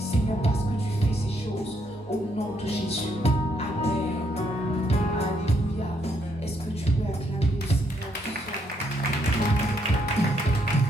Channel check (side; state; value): both; normal; correlation 0.73